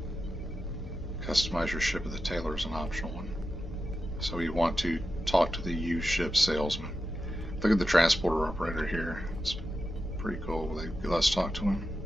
Customize your ship with the tailor is an optional one. So you want to talk to the used ship salesman. Look at the transporter operator here. It's pretty cool. Let's talk to him.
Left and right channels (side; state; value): both; normal; correlation 0.90